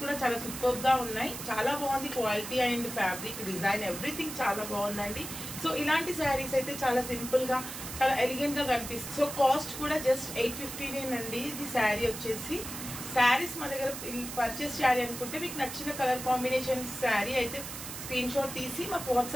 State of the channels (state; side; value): noise; right; hiss, 9 dB below the sound